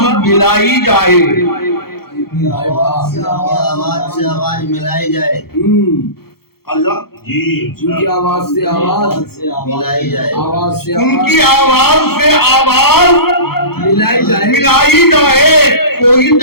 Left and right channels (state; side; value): late; right; 0.95 ms